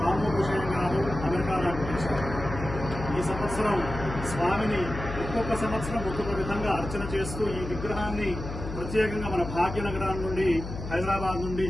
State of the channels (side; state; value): left; noise; hum, 8 dB below the sound